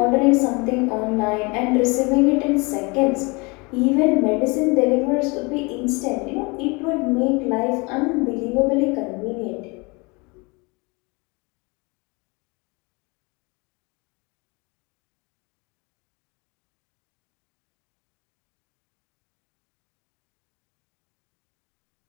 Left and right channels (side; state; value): right; quieter; 27.8 dB